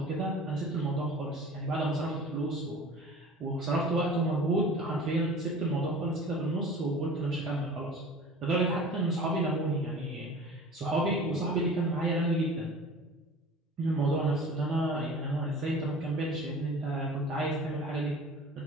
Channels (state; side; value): normal; both; correlation 0.42